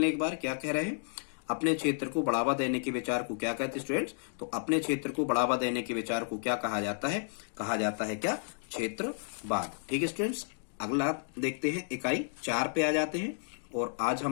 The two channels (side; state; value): right; silent; digital silence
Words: एक बार, क्या कह रहे हैं? अपने क्षेत्र को बढ़ावा देने के विचार को क्या कहते हैं स्टूडेंट्स? तो अपने क्षेत्र को बढ़ावा देने के विचार को क्या कहा जाता है? कहा जाता है क्या? क्षेत्रवाद, ठीक है स्टूडेंट्स। अगला देखते हैं इकाई 4 पे आ जाते हैं, और आज